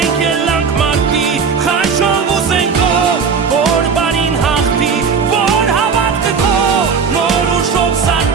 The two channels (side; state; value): left; quieter; 5.8 dB